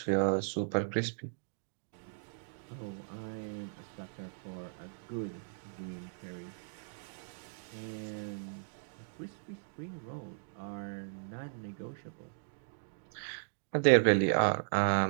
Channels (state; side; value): silent; left; digital silence